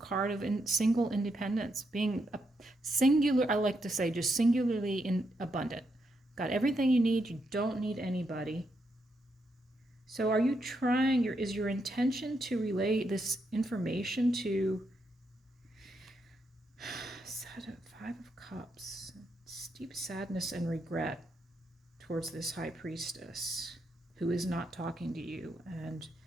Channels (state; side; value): normal; both; correlation 0.80